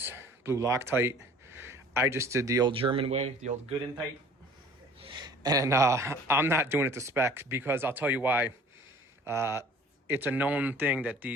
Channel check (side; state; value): both; normal; correlation 0.49